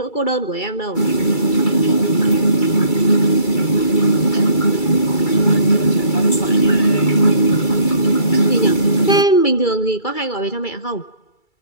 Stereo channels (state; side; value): late; right; 2.3 ms